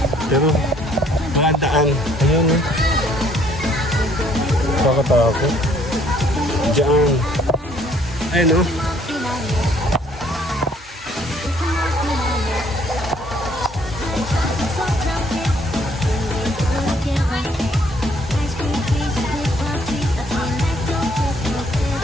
Pero maandaan. Ayun eh. Kakatakot. Diyan. Ayun o.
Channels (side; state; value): both; normal; correlation 0.62